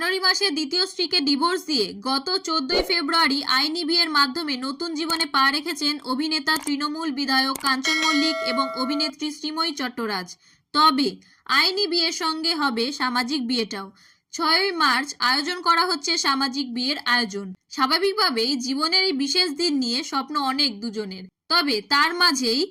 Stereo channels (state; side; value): identical; both; correlation 1.00